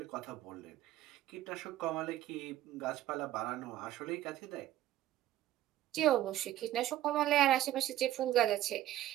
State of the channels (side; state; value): left; quieter; 13.6 dB